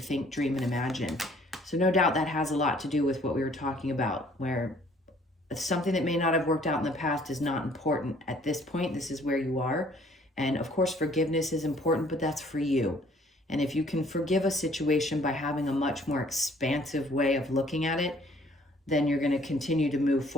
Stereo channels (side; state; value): both; normal; correlation 0.58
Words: think, dream, and imagine. So no doubt that has a lot to do with what we were talking about, where something that may not have worked out in the past is not important at this point. This is where you are. And of course, forgiveness is important, but that's for you. And if you can forgive a situation by having a much more expansive way of looking at it, then you're going to continue to move